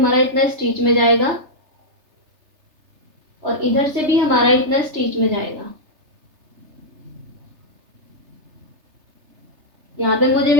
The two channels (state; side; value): late; left; 3.3 ms